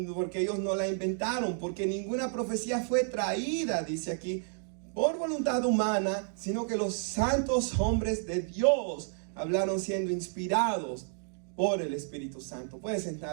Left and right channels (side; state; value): left; silent; 57 dB below the other